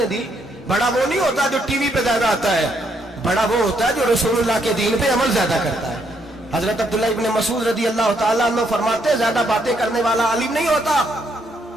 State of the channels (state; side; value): normal; both; correlation 0.74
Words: दी? बड़ा वो नहीं होता जो टीवी पे ज्यादा आता है, बड़ा वो होता है जो रसूलुल्लाह के दीन पे अमल ज्यादा करता है। हजरत अब्दुल्लाह इब्न मसूद रदी अल्लाह ताला अन्हु फरमाते ज्यादा बातें करने वाला आलिम नहीं होता।